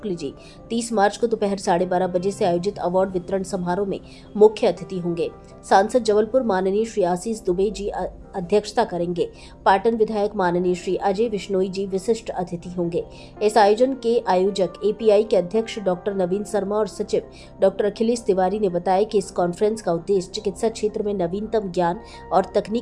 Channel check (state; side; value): identical; both; correlation 1.00